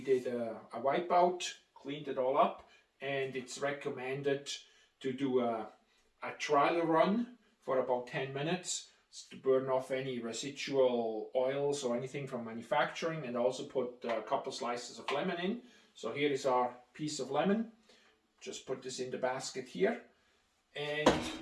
a wipeout, cleaned it all up, and it's recommended to do a trial run for about 10 minutes to burn off any residual oils or anything from manufacturing, and also put a couple slices of lemon in. So here is our piece of lemon. Just put this in the basket here and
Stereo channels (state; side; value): identical; both; correlation 1.00